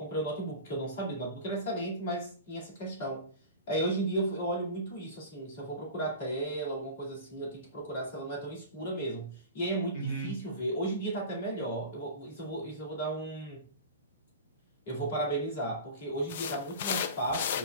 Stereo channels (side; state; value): both; inverted; correlation -0.32